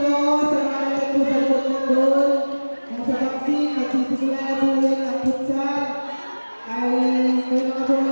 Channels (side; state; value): both; inverted; correlation -1.00